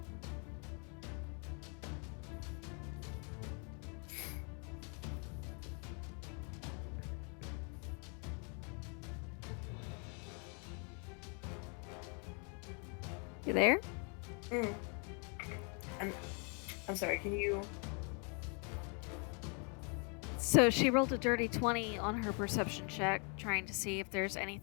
You there? I'm sorry, can you... So she rolled a dirty 20 on her perception check, trying to see if there's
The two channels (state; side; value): quieter; right; 37.5 dB